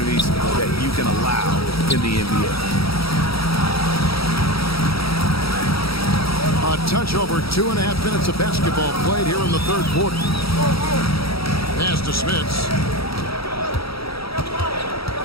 that you can allow in the NBA. A touch over 2.5 minutes of basketball played here in the third quarter. Pass to Smits.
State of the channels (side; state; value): right; late; 0.76 ms